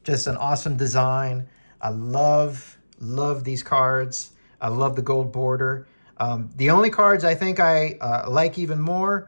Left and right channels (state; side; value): inverted; both; correlation -1.00